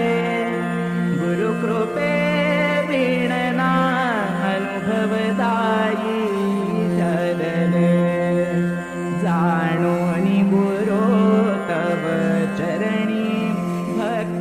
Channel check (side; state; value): both; identical; correlation 1.00